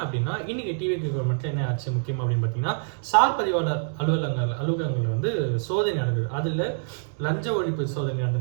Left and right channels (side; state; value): left; silent; digital silence